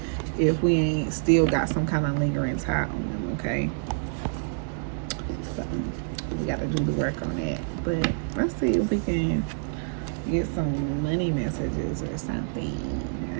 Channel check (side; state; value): left; silent; digital silence